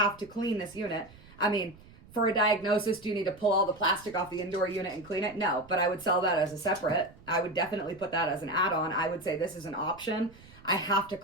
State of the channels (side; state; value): right; noise; rumble, 22 dB below the sound